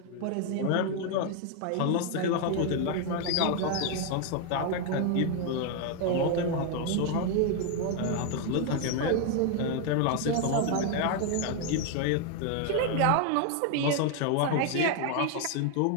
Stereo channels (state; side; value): different; both; correlation 0.01